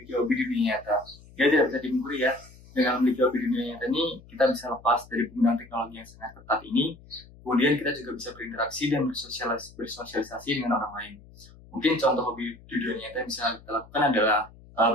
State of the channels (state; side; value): noise; left; hum, 22 dB below the sound